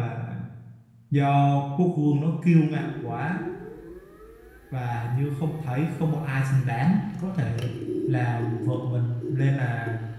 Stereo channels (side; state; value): both; identical; correlation 1.00